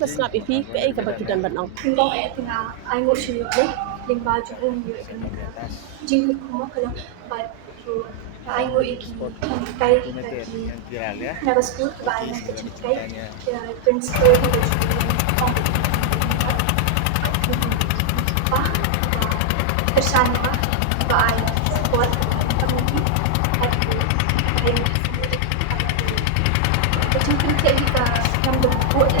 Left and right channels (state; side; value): different; both; correlation 0.00